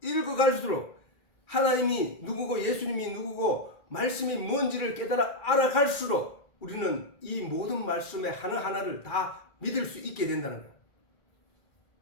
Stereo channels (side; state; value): right; late; 2.4 ms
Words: 읽어갈수록 하나님이 누구고 예수님이 누구고 말씀이 뭔지를 깨달아 알아갈수록 우리는 이 모든 말씀의 하나하나를 다 믿을 수 있게 된다는 거예요.